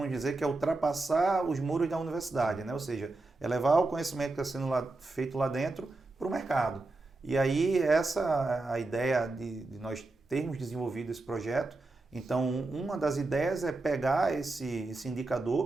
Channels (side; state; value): left; quieter; 3.2 dB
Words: dizer que é ultrapassar os muros da universidade, né? Ou seja, é levar o conhecimento que está sendo feito lá dentro para o mercado. E aí essa a ideia de nós termos desenvolvido esse projeto. Então, uma das ideias é pegar esse